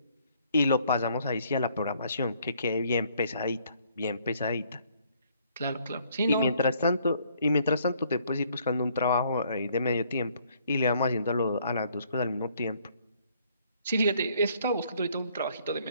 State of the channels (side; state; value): both; inverted; correlation -0.65